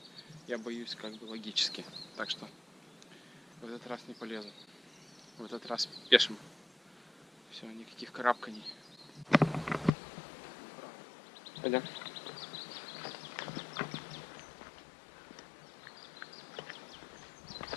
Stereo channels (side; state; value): right; drops out; at 9.9 s